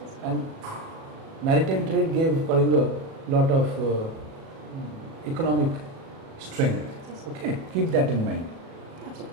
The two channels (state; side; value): late; left; 37 ms